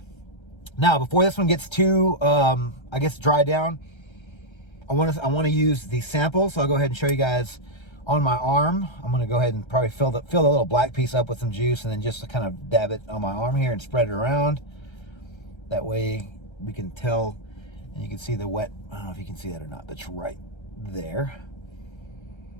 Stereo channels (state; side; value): late; right; 1.3 ms